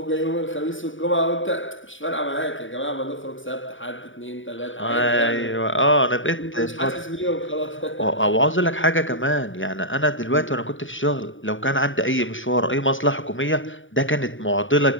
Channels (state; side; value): late; right; 0.57 ms